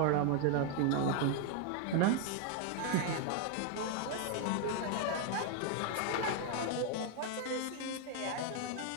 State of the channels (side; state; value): both; different; correlation 0.00